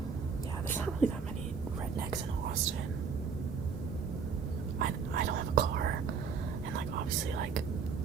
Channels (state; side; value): quieter; left; 5.9 dB